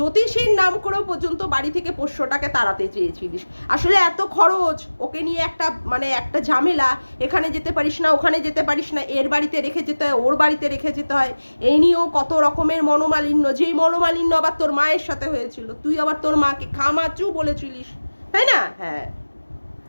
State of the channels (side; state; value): both; inverted; correlation -1.00